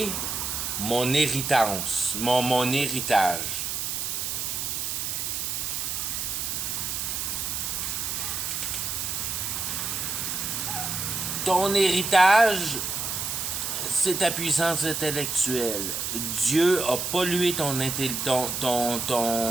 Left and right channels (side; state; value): right; noise; hiss, 2 dB below the sound